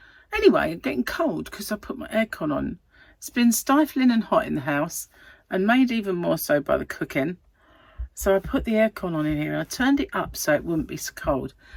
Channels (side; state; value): both; identical; correlation 1.00